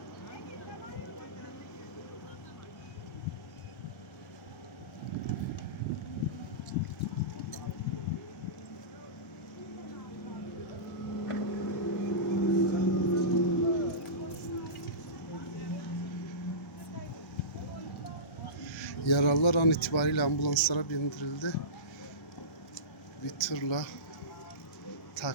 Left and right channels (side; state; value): right; late; 1.3 ms